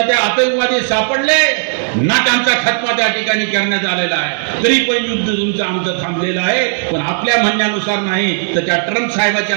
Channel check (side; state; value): left; silent; 60 dB below the other